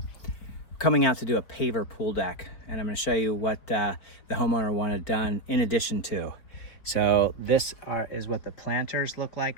coming out to do a paver pool deck, and I'm going to show you what the homeowner wanted done in addition to. So this is what the planters look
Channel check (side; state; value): right; late; 4.7 ms